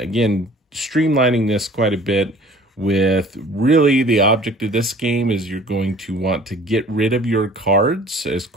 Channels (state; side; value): normal; both; correlation 0.49